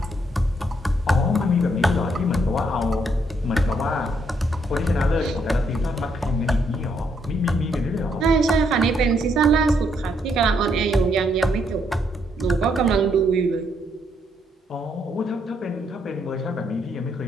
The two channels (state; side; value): normal; both; correlation 0.73